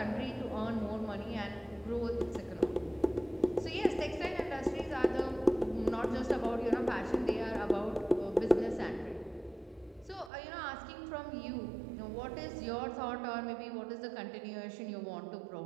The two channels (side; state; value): left; drops out; at 10.3 s